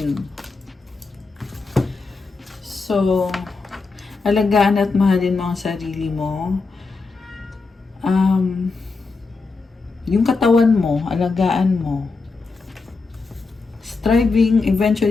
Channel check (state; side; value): quieter; right; 4.1 dB